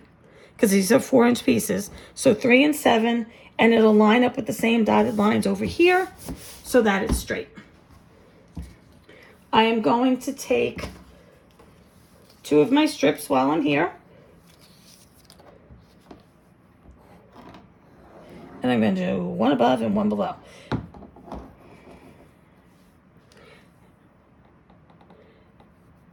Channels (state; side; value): identical; both; correlation 1.00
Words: because these are 4-inch pieces. So 3 and 7, and it'll line up with the same dotted lines over here so that it's straight. I am going to take 2 of my strips while I'm here. And I'm going to do one above and one below.